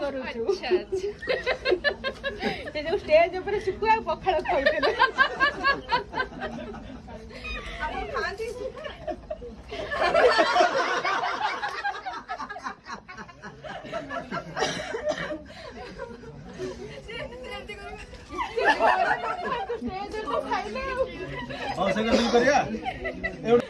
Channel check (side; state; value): both; identical; correlation 1.00